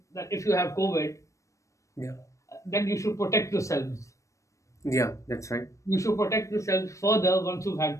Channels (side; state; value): right; late; 0.15 ms